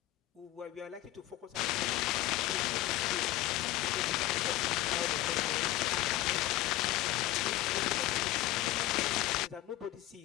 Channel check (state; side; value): quieter; right; 15.4 dB